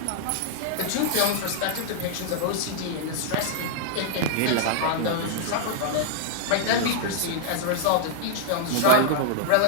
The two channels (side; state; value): both; different; correlation -0.01